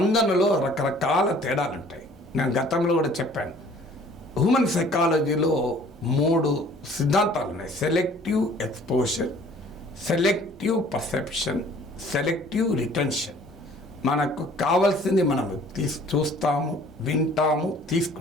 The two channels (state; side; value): normal; both; correlation 0.53